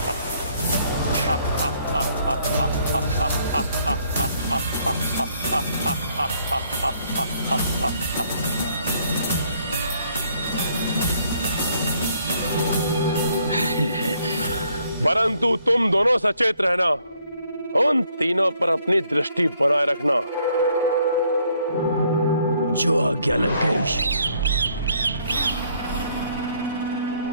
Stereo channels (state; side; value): inverted; both; correlation -0.67